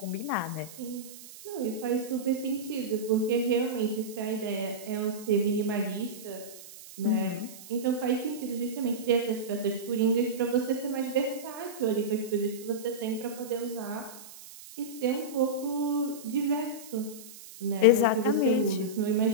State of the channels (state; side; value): noise; right; hiss, 16 dB below the sound